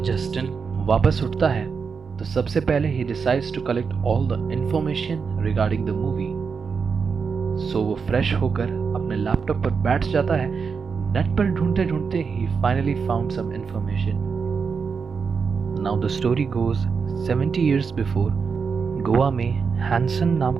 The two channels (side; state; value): left; quieter; 5.6 dB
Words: जस्टिन वापस उठता है तो सबसे पहले he decides to collect all the information regarding the movie. So वो फ्रेश होकर अपने लैपटॉप पर बैठ जाता है। नेट पर ढूंढते ढूंढते he finally found some information. Now the story goes 70 years before Goa में हैंसन नाम